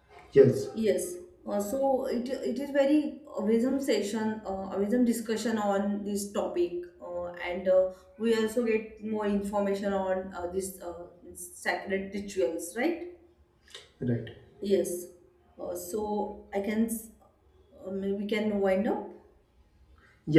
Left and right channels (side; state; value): both; identical; correlation 1.00